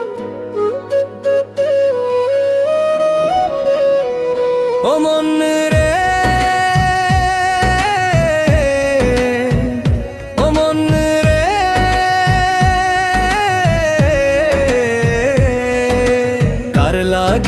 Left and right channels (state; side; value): identical; both; correlation 1.00